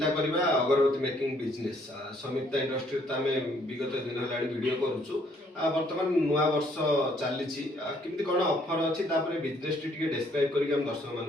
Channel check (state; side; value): normal; both; correlation 0.66